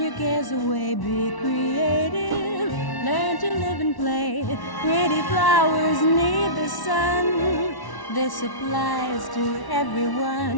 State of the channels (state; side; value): late; right; 1.1 ms